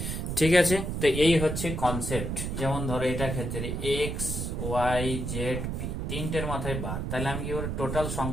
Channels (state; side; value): noise; right; rumble, 3 dB below the sound